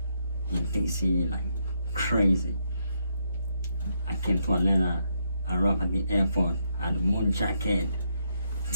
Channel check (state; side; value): inverted; both; correlation -0.79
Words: in DC, like crazy. I came to Atlanta. I arrived at the airport. I had a moon jacket,